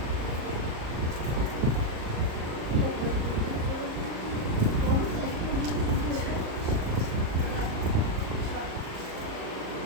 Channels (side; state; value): left; late; 38 ms